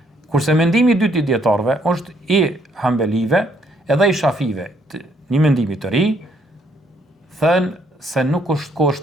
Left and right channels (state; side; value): normal; both; correlation 0.69